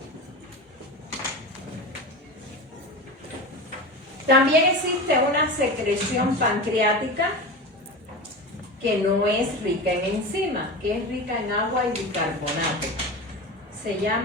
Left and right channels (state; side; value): normal; both; correlation 0.27